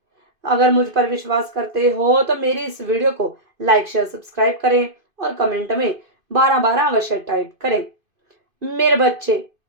अगर मुझ पर विश्वास करते हो तो मेरी इस वीडियो को लाइक शेयर सब्सक्राइब करें और कमेंट में 12 12 अवश्य टाइप करें। मेरे बच्चे,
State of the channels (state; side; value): late; left; 2.5 ms